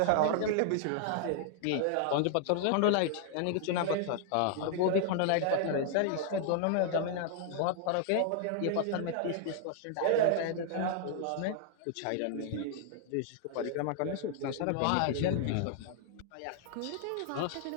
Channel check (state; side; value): different; both; correlation 0.00